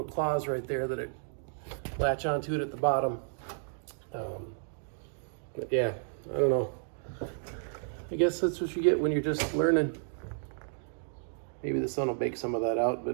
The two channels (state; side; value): silent; left; digital silence